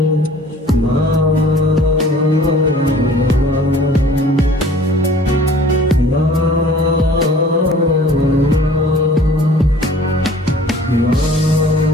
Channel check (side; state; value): both; normal; correlation 0.50